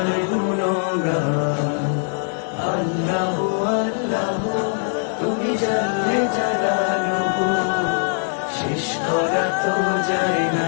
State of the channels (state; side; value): silent; right; 65 dB below the other